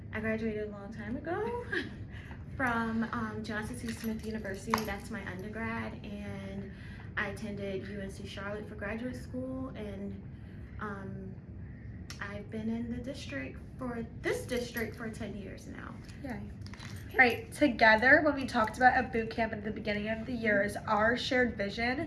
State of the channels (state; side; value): identical; both; correlation 1.00